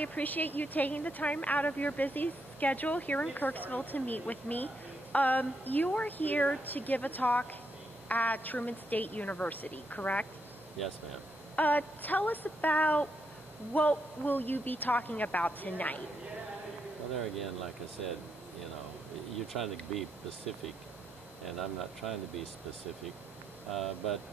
you taking the time out of your busy schedule here in Kirksville to meet with me. You are here to give a talk at Truman State University, correct? Yes, ma'am. Tell us about what will you be talking about tonight? Well, there again, like I said, you're trying to be specific, and I'm not trying to be specific. But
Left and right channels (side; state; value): both; normal; correlation 0.79